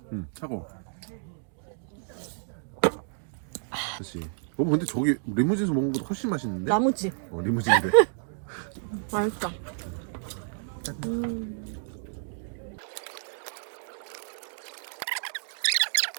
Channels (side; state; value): left; silent; digital silence